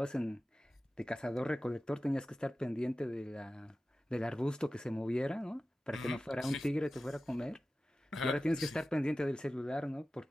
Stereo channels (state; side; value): normal; both; correlation 0.95